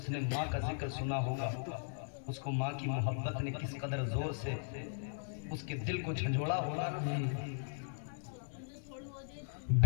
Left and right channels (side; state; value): right; silent; digital silence